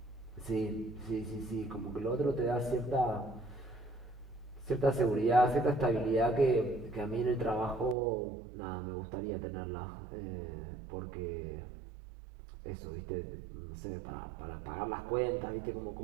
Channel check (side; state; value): left; drops out; at 8.0 s